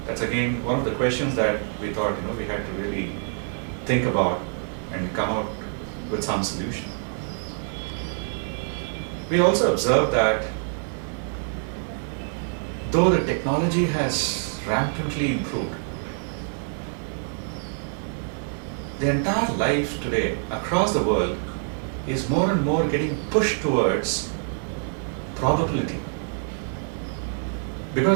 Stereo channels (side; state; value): left; silent; 55 dB below the other